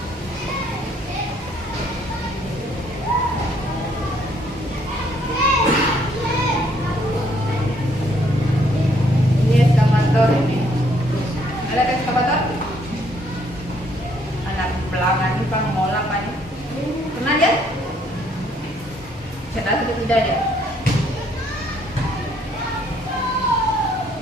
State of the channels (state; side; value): normal; both; correlation 0.67